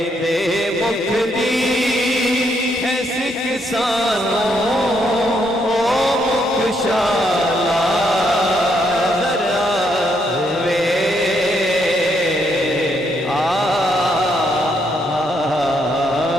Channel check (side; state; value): both; normal; correlation 0.75